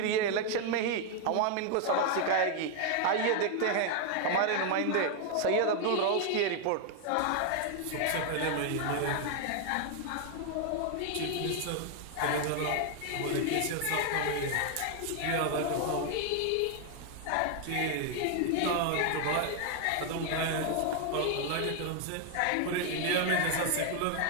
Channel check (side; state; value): both; different; correlation 0.00